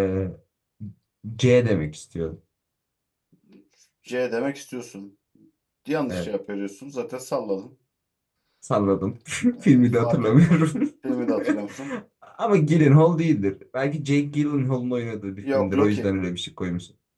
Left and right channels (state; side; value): identical; both; correlation 1.00